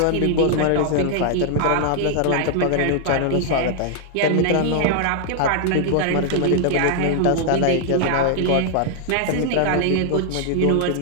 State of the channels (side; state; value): both; different; correlation 0.00